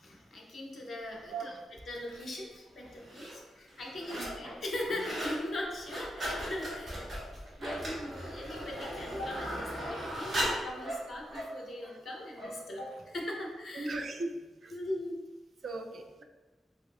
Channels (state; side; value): normal; both; correlation 0.82